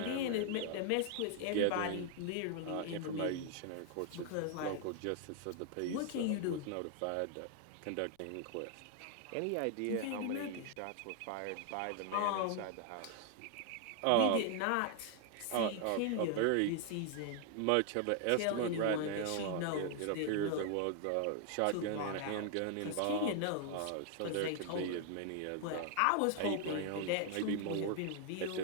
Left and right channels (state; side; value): different; both; correlation 0.00